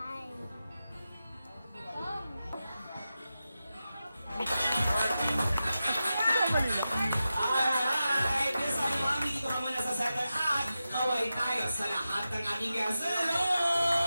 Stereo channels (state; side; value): inverted; both; correlation -0.91